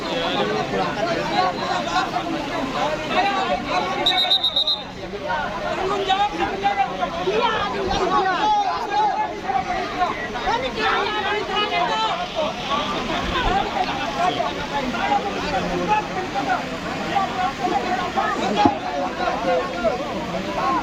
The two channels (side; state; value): both; identical; correlation 1.00